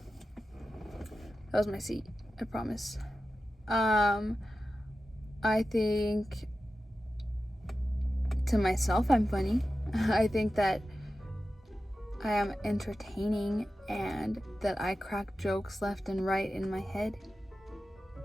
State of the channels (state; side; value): normal; both; correlation 0.93